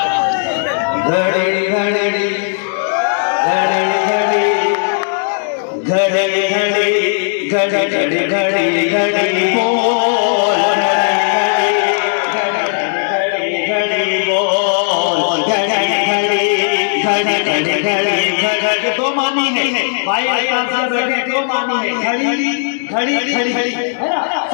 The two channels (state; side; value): silent; right; digital silence